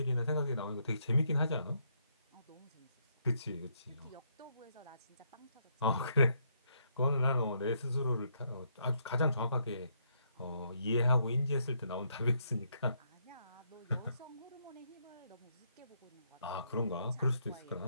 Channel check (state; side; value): inverted; both; correlation -0.74